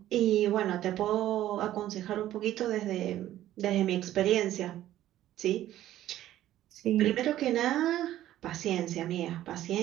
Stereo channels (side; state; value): left; quieter; 13.3 dB